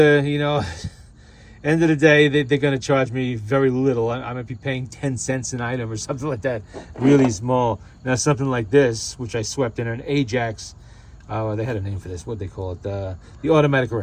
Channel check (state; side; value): identical; both; correlation 1.00